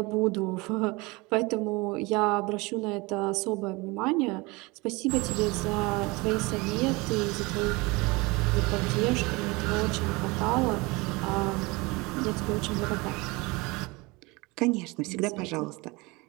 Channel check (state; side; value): quieter; left; 24.8 dB